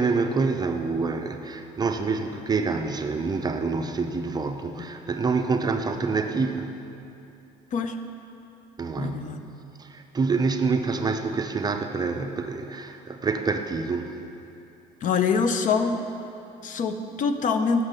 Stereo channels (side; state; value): both; normal; correlation 0.60